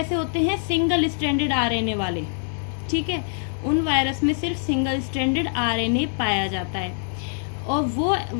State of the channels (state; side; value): silent; right; 63 dB below the other